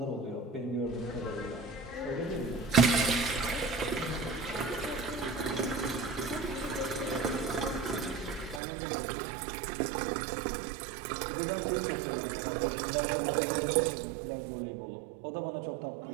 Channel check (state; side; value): drops out; left; at 8.6 s